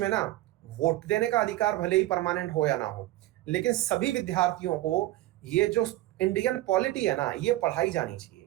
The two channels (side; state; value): left; quieter; 16.5 dB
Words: ना वोट देने का अधिकार भले ही परमानेंट हो या ना हो, लेकिन सभी विद्यार्थियों को ये जो इंडियन पॉलिटी है ना, ये पढ़ाई जानी चाहिए,